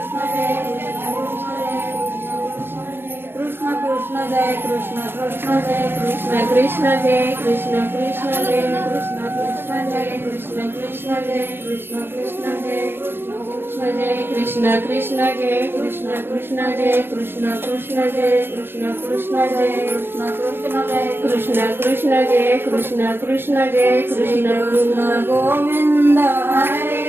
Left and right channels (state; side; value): late; left; 0.10 ms